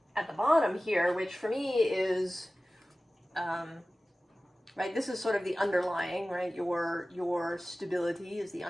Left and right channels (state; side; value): normal; both; correlation 0.97